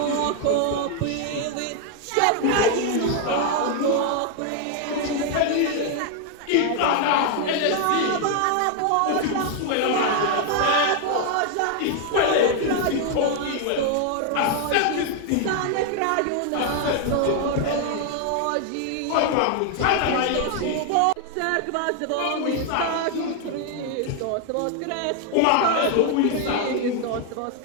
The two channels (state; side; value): different; both; correlation 0.00